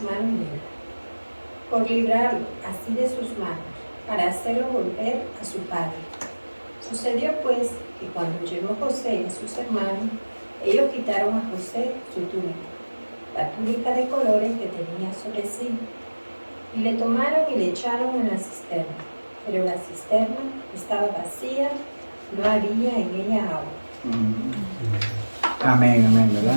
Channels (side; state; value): both; inverted; correlation -1.00